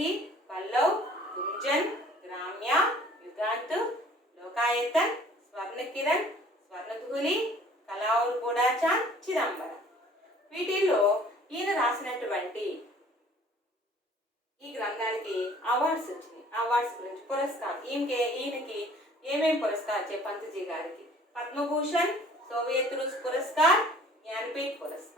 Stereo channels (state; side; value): normal; both; correlation 0.53